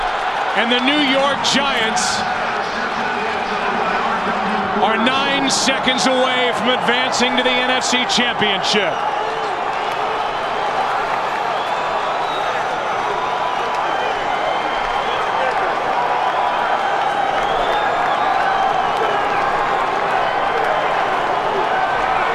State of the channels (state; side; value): identical; both; correlation 1.00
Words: and the New York Giants are 9 seconds away from advancing to the NFC Championship.